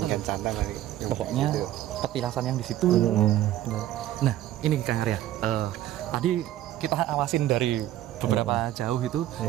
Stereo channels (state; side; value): quieter; left; 13.2 dB